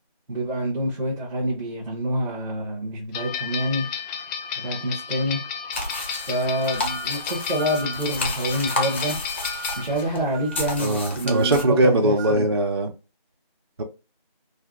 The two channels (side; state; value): both; inverted; correlation -0.39